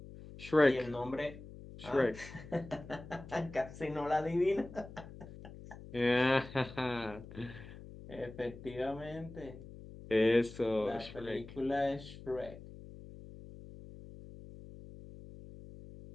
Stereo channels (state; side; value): noise; left; hum, 15 dB below the sound